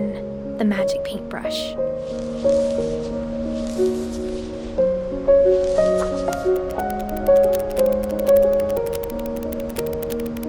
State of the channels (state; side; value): identical; both; correlation 1.00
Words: The Magic Paintbrush.